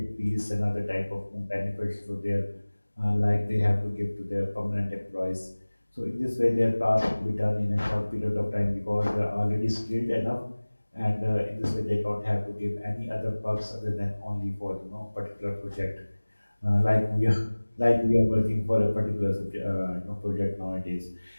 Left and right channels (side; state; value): both; inverted; correlation -1.00